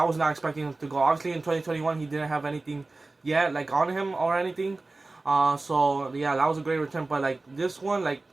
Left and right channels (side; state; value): left; quieter; 3.3 dB